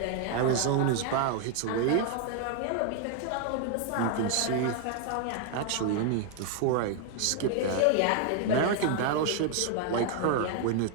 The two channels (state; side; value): different; both; correlation 0.00